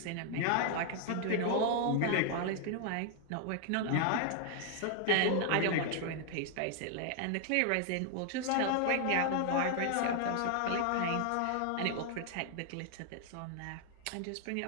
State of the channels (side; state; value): both; different; correlation 0.00